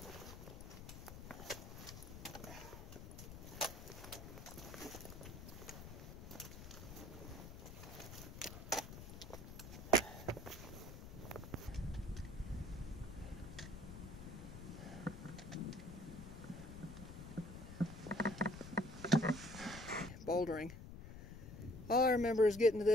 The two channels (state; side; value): noise; left; rumble, 11 dB below the sound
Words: Bouldering. All I remember is getting to